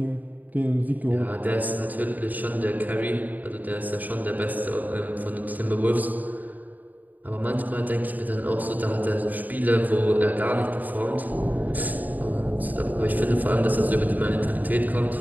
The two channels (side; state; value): left; late; 0.082 ms